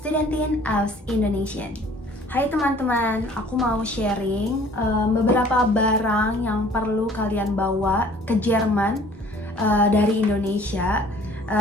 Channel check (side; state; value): both; normal; correlation 0.53